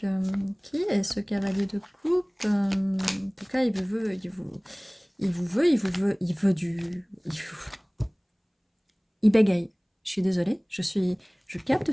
Qui est ce cavalier de coupe? En tout cas, il vous veut, il bégaye. Je suis désolée, je capte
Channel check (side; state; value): both; identical; correlation 1.00